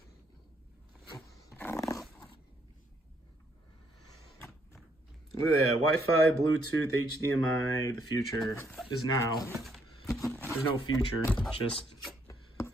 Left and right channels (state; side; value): normal; both; correlation 0.71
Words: Look at that, Wi-Fi, Bluetooth, HDMI, the future is now. There's no future, just